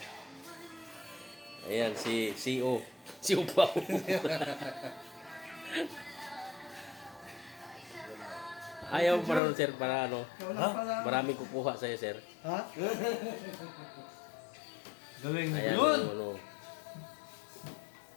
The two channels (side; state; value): right; drops out; at 9.4 s